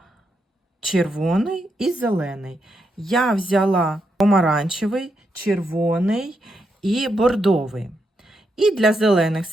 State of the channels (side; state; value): both; normal; correlation 0.82